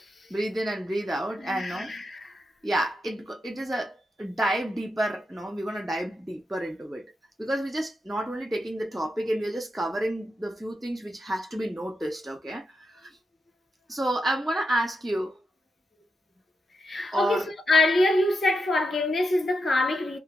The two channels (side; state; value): both; normal; correlation 0.86